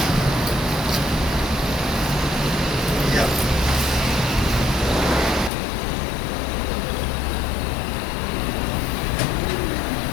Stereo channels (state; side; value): drops out; right; at 5.5 s